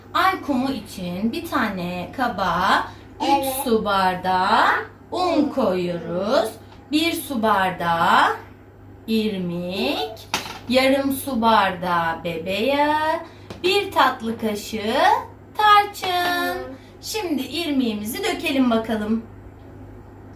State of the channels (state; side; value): identical; both; correlation 1.00